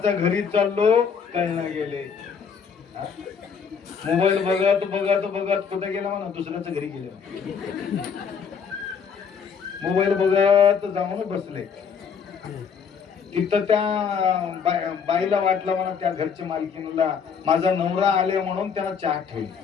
घरी चाललो कळणं गेले. मोबाईल बघत बघत बघत कुठे गेला म्हणा दुसऱ्याच्या घरी गेले. मोबाईल बघत जाऊन बसले. तिथं त्या बाईला वाटलं म्हणा त्या घरच्या मालकीला माझा नवरा आले म्हणून त्याला चहा ठेवली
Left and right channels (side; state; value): right; quieter; 6.5 dB